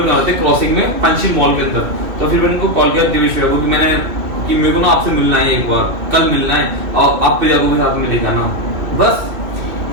वाले थे क्रॉसिंग में पंचशील मॉल के अंदर। तो फिर मैंने उनको कॉल किया दिवेश भैया को कि मेरे को ना आपसे मिलना है, एक बार कल मिलना है, और आप प्रिया को भी साथ में ले जाना। बस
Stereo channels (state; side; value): late; left; 2.8 ms